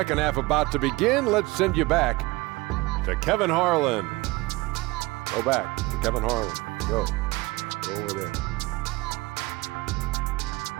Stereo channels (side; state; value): left; quieter; 21.9 dB